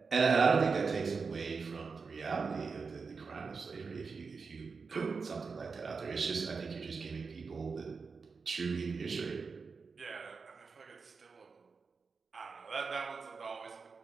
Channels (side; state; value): left; quieter; 4.9 dB